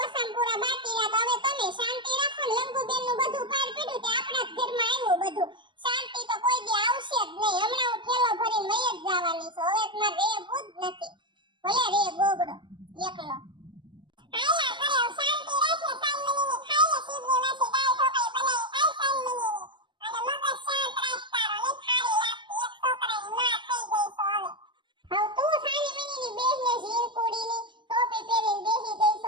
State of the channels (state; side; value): late; left; 0.23 ms